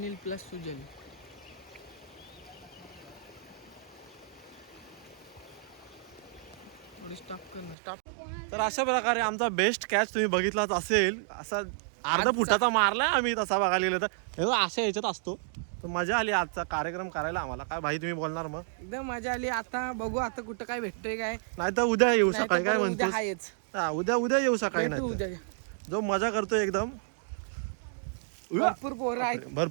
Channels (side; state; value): left; drops out; at 7.8 s